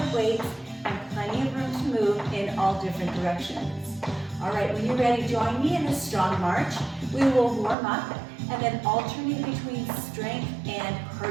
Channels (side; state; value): left; drops out; at 7.8 s